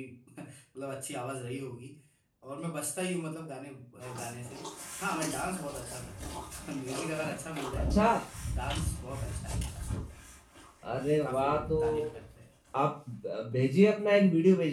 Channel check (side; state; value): both; identical; correlation 1.00